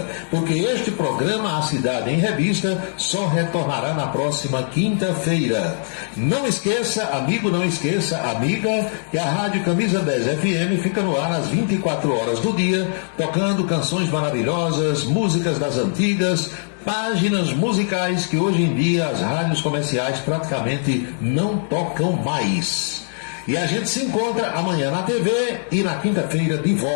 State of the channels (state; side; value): silent; right; 64 dB below the other